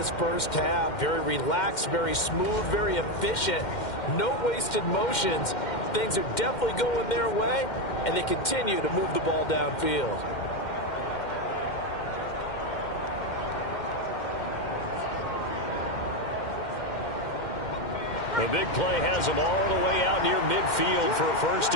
first half. Very relaxed, very smooth, very efficient. No wasted motions. Things are definitely going their way, and they continue to move the ball downfield. The big play has them all the way out near midfield for a 1st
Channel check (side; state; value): right; late; 2.1 ms